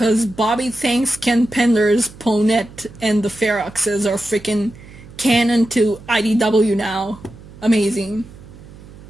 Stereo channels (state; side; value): noise; right; hum, 19 dB below the sound